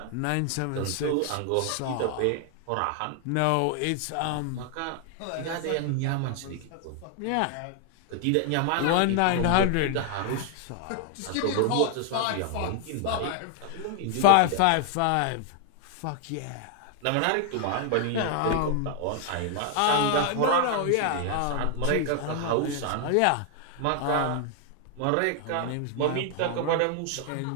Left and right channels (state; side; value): different; both; correlation 0.00